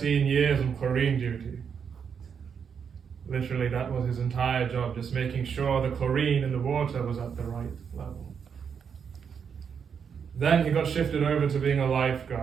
years on chlorine duty. Literally, that was his entire job, just making sure the chlorine in the water was at the right level. Then he got shifted over to being a lifeguard.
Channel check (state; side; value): quieter; left; 6.9 dB